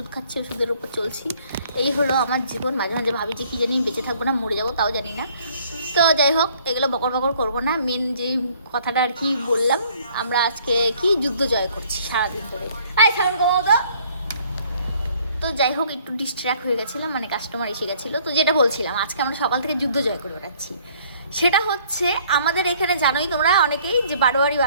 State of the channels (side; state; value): both; inverted; correlation -0.59